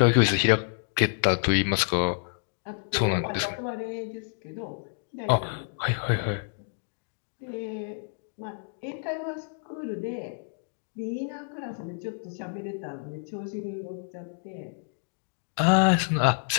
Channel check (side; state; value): right; silent; digital silence